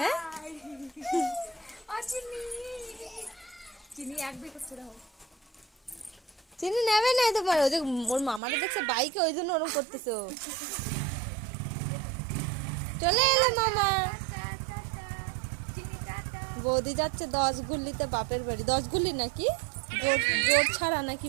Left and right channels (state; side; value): drops out; left; at 8.4 s